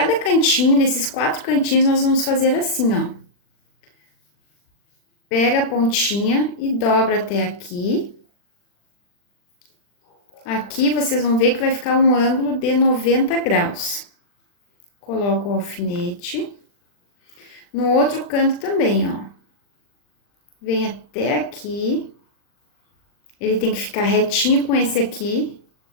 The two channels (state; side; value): late; right; 40 ms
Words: cantinho, desses 4 cantinhos, nós vamos fazer assim, ó. Pega a pontinha e dobra até aqui. Aqui, vocês vão ver que vai ficar um ângulo de 90 graus. Coloco o alfinete. No outro canto também, ó. Vem até aqui. Ele tem que ficar retinho com esse aqui.